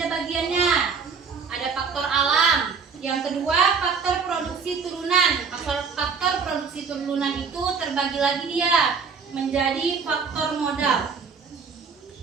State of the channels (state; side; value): quieter; left; 5.5 dB